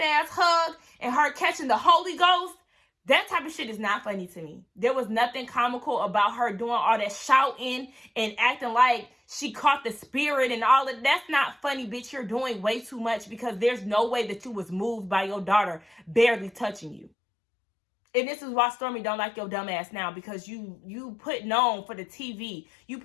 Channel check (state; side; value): drops out; right; at 17.1 s